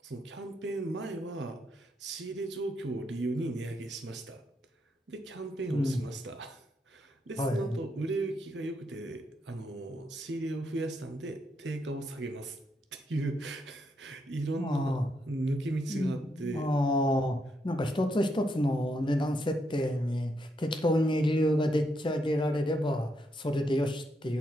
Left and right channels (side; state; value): both; normal; correlation 0.79